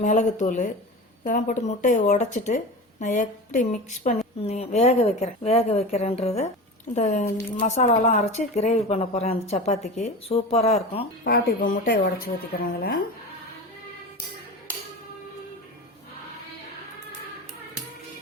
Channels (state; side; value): normal; both; correlation 0.29